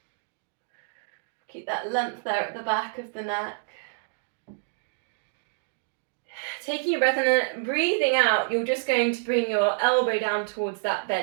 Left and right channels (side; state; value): left; silent; digital silence